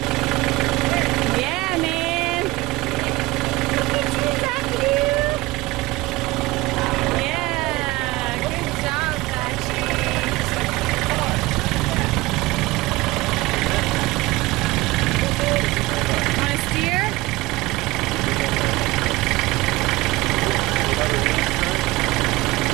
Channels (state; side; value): quieter; left; 20.6 dB